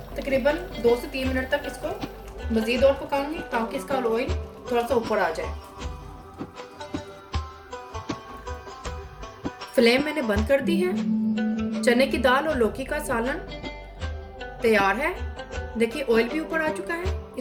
तकरीबन 2 से 3 मिनट तक इसको मज़ीद और पकाऊंगी ताकि इसका ऑयल थोड़ा सा ऊपर आ जाए। फ्लेम मैंने बंद कर दी है। चने की दाल और लौकी का सालन तैयार है। देखिए ऑयल भी ऊपर आ चुका है।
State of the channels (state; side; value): identical; both; correlation 1.00